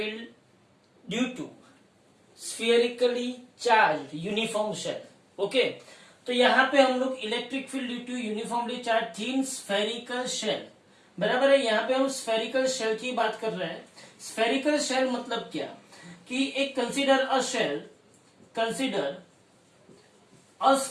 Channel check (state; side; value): identical; both; correlation 1.00